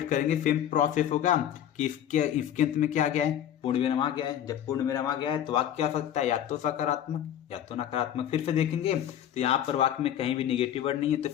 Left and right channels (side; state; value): right; quieter; 10.5 dB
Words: करेंगे सेम प्रोसेस होगा कि इसके अंत में क्या आ गया है, पूर्ण विराम आ गया है। जब पूर्ण विराम आ गया है तो वाक्य क्या हो सकता है, या तो सकारात्मक या तो नकारात्मक। फिर से देखेंगे तो यहाँ पर वाक्य में कहीं भी निगेटिव वर्ड नहीं है,